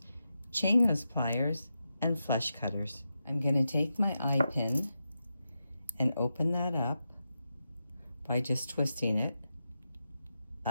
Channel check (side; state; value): both; inverted; correlation -0.89